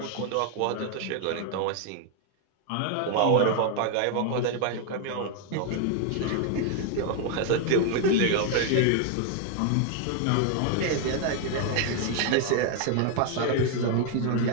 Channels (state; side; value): different; both; correlation 0.00